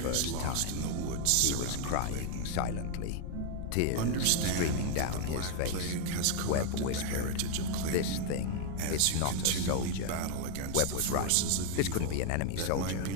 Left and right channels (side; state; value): both; different; correlation 0.01